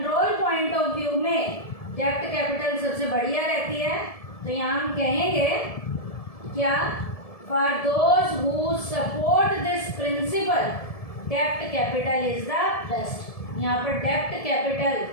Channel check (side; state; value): right; late; 1.7 ms